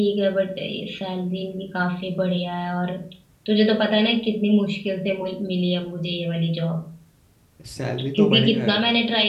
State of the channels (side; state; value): both; identical; correlation 1.00